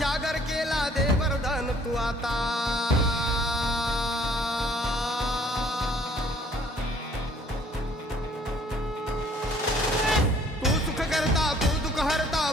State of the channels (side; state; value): both; normal; correlation 0.58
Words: केला दे वरदान तू आता तू सुख करता तू दुःख हरता